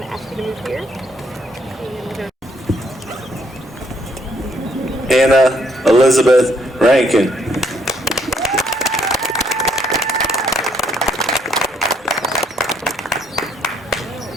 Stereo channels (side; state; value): both; normal; correlation 0.69